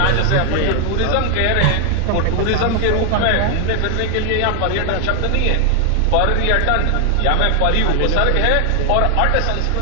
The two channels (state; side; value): different; both; correlation 0.00